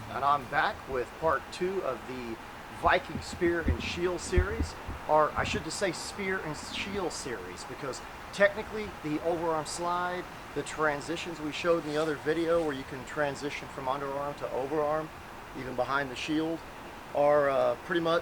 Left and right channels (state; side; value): identical; both; correlation 1.00